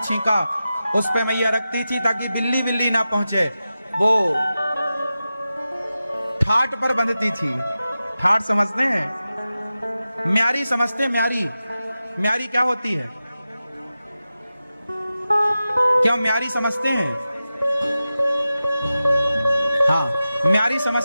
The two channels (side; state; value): both; inverted; correlation -0.93